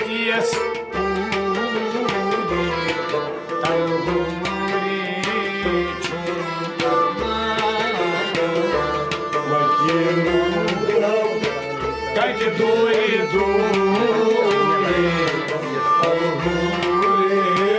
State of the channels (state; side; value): identical; both; correlation 1.00